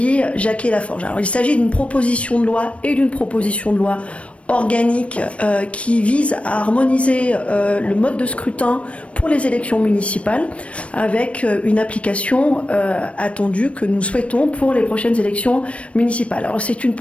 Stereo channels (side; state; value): right; late; 0.062 ms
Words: Jacquet-Laforge. Alors, il s'agit d'une proposition de loi et d'une proposition de loi organique qui vise à harmoniser le mode de scrutin pour les élections municipales avec une application attendue que nous souhaitons pour les prochaines élections municipales. Alors c'est une